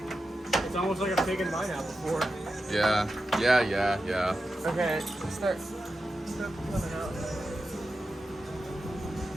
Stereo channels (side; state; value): both; normal; correlation 0.90